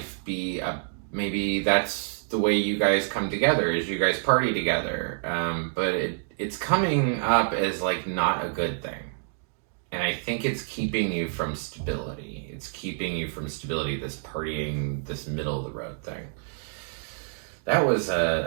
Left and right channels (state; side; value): silent; left; digital silence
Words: be maybe that's the way you guys come together, is you guys party together. But it's coming up as like not a good thing. And I think it's keeping you from stability. It's keeping you from stability, this partying, this middle of the road thing. That was